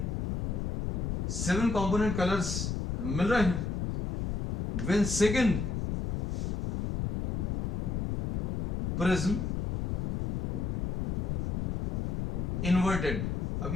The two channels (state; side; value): noise; left; rumble, 2 dB below the sound